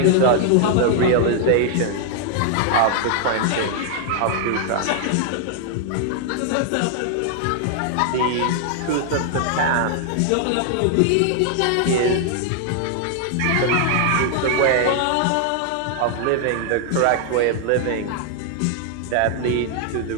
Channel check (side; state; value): both; different; correlation 0.00